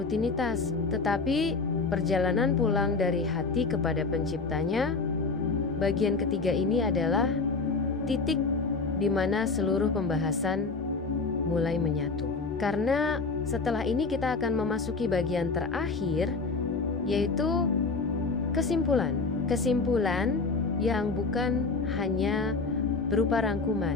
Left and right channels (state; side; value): quieter; right; 4.1 dB